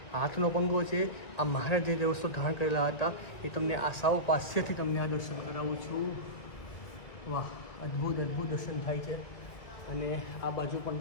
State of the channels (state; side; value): late; right; 1.6 ms